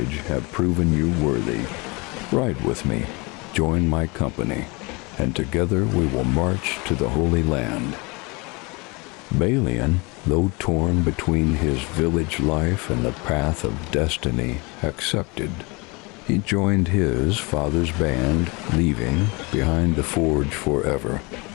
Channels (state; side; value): quieter; right; 27.5 dB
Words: have proven you worthy. Ride with me. Join my company, and together we will march to the Holy Land." Balian, though torn between his village life and the path of destiny, accepted. He joined his father's band, leaving behind the forge forever.